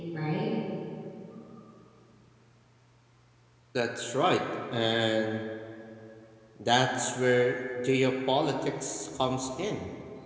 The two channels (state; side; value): identical; both; correlation 1.00